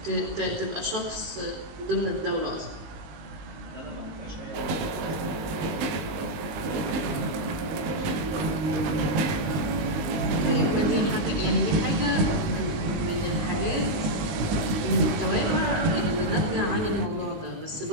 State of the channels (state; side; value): late; left; 19 ms